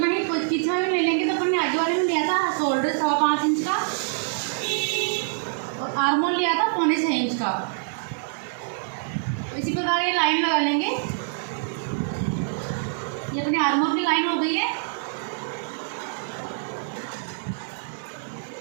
ही पीछे में ले लेंगे। तो अपन ने आगे वाले में लिया था शोल्डर 5.25 इंच का, और आर्महोल लिया था 6.25 इंच का। तो इसी प्रकार ये लाइन लगा लेंगे। ये अपनी आर्महोल की लाइन हो गई है।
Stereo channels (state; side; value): silent; left; 62 dB below the other